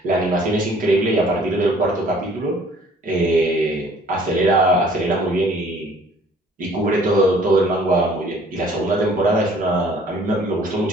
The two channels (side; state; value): both; normal; correlation 0.55